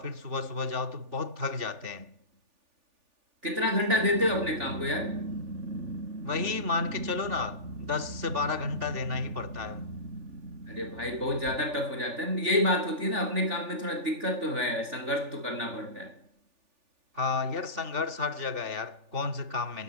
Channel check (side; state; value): left; late; 3.4 ms